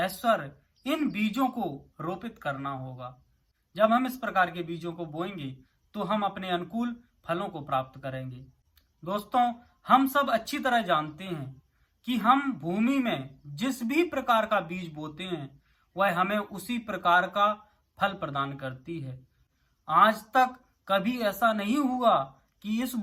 इन बीजों को रोपित करना होगा। जब हम इस प्रकार के बीजों को बोएंगे तो हम अपने अनुकूल फलों को प्राप्त करेंगे। दोस्तों, हम सब अच्छी तरह जानते हैं कि हम भूमि में जिस भी प्रकार का बीज बोते हैं वह हमें उसी प्रकार का फल प्रदान करती है। आज तक कभी ऐसा नहीं हुआ कि इस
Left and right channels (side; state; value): both; identical; correlation 1.00